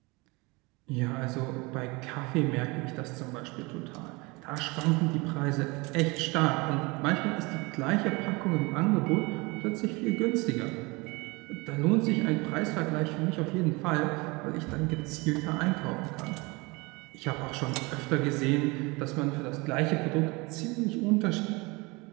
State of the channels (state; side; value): quieter; left; 25.6 dB